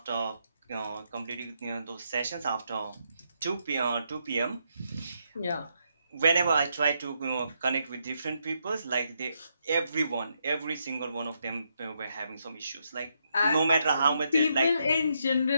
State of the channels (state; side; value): inverted; both; correlation -0.79